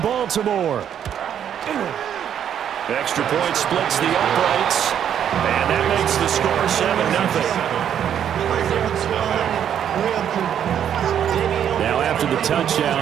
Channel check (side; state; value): left; quieter; 9.3 dB